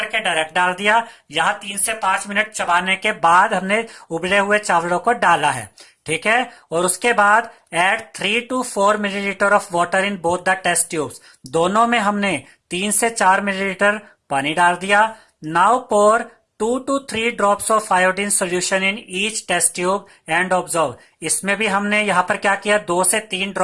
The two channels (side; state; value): both; identical; correlation 1.00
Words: डायरेक्ट डाल दिया, यहां 3 से 5 मिनट चबाने के बाद हमने उबले हुए चावलों को डाला है। ठीक है। और उसके बाद add 3 to 4 millilitre of water in both the test tubes. दोनों में हमने 3 से 4 मिलीलीटर पानी डाल दिया। Now pour 2 to 3 drops of iodine solution in each test tube and observe. इसमें भी हमने यहाँ पर क्या किया, 2 से 3